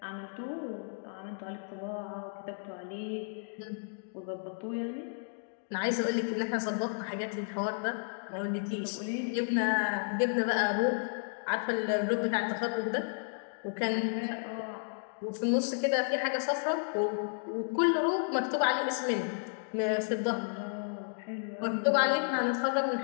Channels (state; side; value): silent; right; digital silence